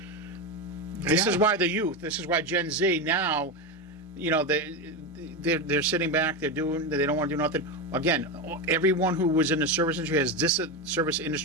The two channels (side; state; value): both; normal; correlation 0.15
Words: this Yeah. is why the youth, this is why Gen Z now, they're sitting back, they don't want to do nothing. Again, everyone who was in the service industry service